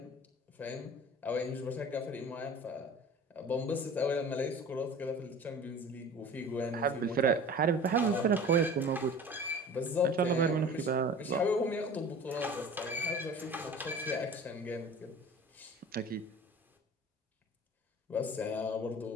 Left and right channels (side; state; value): both; normal; correlation 0.41